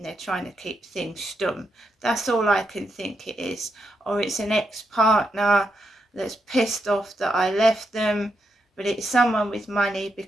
they're trying to keep things stum. That's all I can think it is. Or it's an ex-partner that's pissed off that I left them, but it's someone with money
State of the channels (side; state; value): both; normal; correlation 0.83